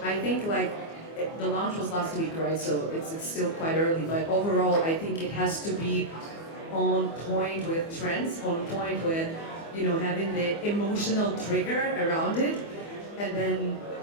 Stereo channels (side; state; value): right; late; 24 ms